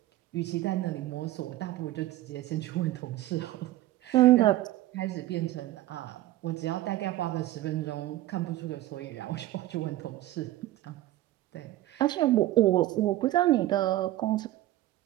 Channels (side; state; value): left; quieter; 15.5 dB